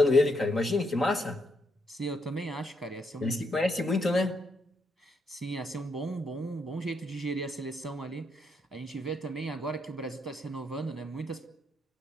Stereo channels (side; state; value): both; normal; correlation 0.77